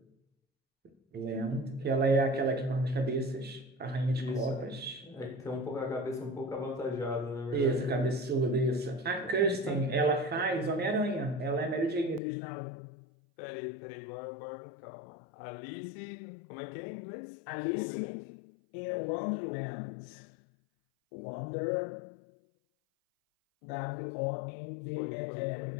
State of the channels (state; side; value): drops out; right; at 12.2 s